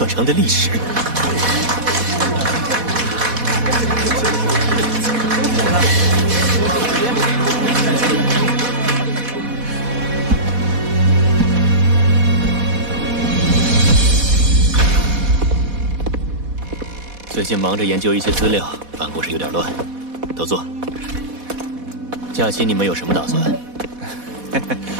城的历史。最近忙着研究一些资料，办公室有点乱，都坐。假期你们有什么打算？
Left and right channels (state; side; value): late; left; 4.1 ms